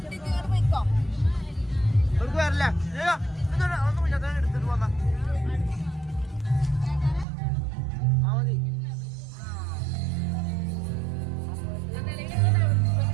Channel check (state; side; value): drops out; left; at 7.2 s